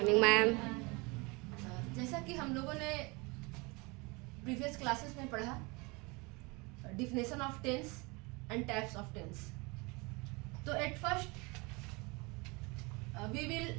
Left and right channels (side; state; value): left; quieter; 27.0 dB